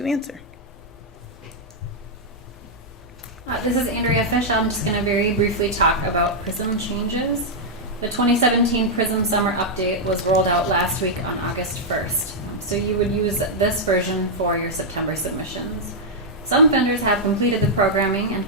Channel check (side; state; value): both; normal; correlation -0.05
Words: answer. This is Andrea Fish. I'm just going to very briefly talk about PRISM changes. The 2017 PRISM Summer Update was rolled out last week on August 1st. So you would use this version for your September submissions. Some vendors have completed the programming and